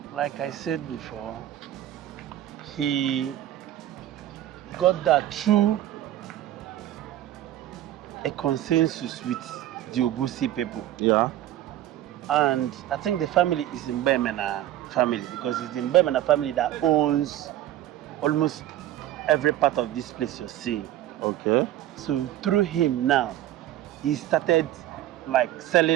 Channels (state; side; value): quieter; left; 13.0 dB